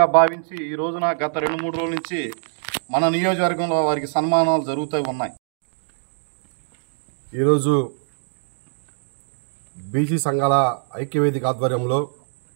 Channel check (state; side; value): silent; left; digital silence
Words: భావించి ఈ రోజున గత 2-3 రోజుల నుంచి మన నియోజకవర్గంలో వారికి సన్మానాలు జరుగుతూ ఉన్నాయి. ఈరోజు బీసీ సంఘాల ఐక్యవేదిక ఆధ్వర్యంలో